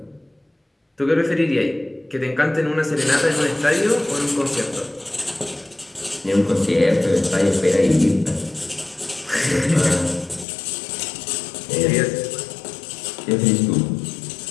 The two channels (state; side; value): drops out; right; at 10.5 s